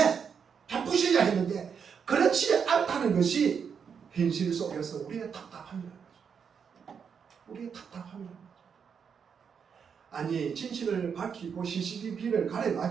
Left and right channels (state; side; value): quieter; left; 6.8 dB